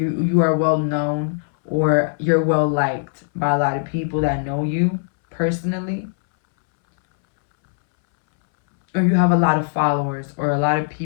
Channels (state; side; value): silent; right; 66 dB below the other